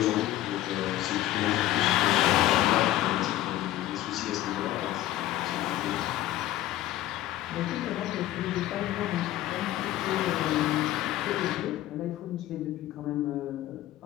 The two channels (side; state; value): right; quieter; 14.3 dB